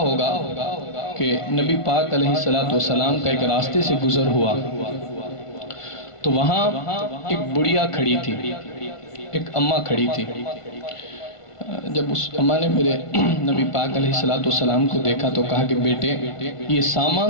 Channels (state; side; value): late; right; 1.5 ms